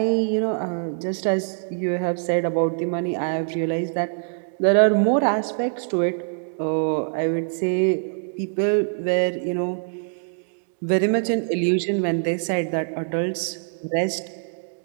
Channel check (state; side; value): silent; left; digital silence